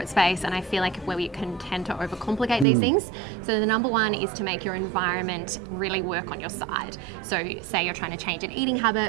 space and I feel like where we can tend to overcomplicate these things. So the number one is to make your environment really work on your side. So say you're trying to change an eating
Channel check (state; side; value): drops out; left; at 2.7 s